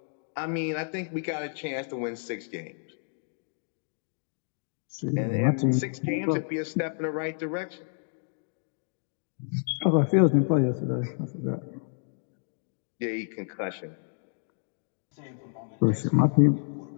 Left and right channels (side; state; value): right; silent; digital silence